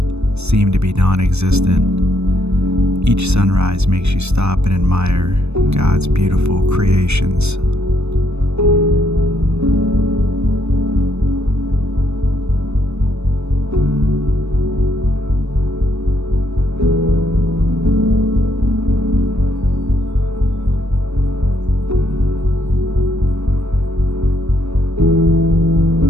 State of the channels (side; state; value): left; late; 0.81 ms